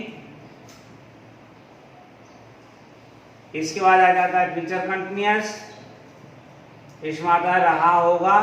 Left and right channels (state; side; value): identical; both; correlation 1.00